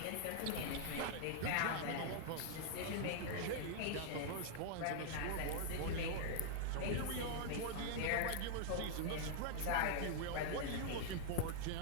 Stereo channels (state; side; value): different; both; correlation -0.01